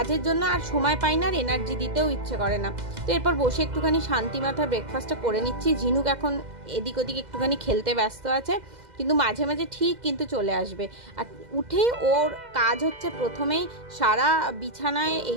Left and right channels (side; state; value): left; late; 2.0 ms